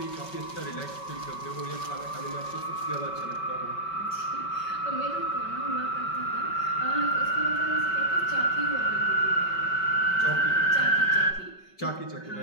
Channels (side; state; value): right; late; 5.3 ms